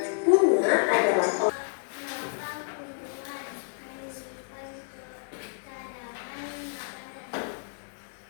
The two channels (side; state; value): right; silent; digital silence